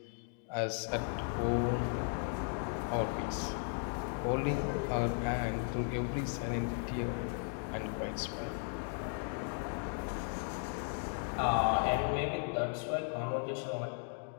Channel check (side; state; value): right; silent; 54 dB below the other